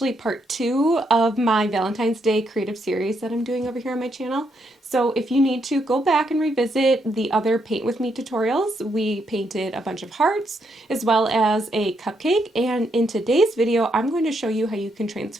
part 2 of my Valentine's Day creative series that I'm doing over here on my channel. So if you need to go back and revisit the other Paint With Me tutorials, we painted a bunch of hearts as well as a cupcake, and in today's video I'm going to show you how you can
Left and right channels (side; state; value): both; normal; correlation 0.77